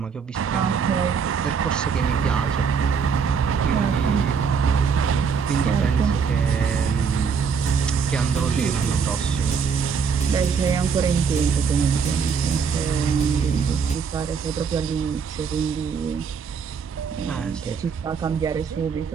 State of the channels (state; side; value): quieter; left; 6.1 dB